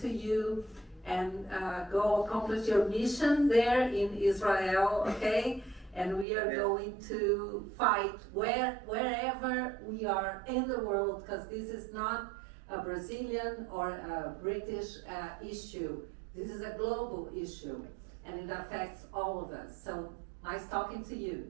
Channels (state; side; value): drops out; left; at 6.2 s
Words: you. And go accomplish your mission there in Israel, okay? And we are going to fight wherever we are in the world, because this is not a Brazilian or a British issue. This is a global issue, and it affects all of us. So nice talking to